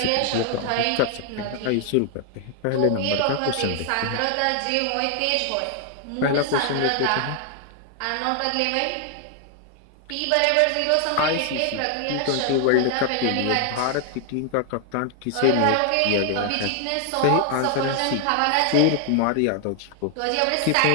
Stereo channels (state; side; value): different; both; correlation 0.00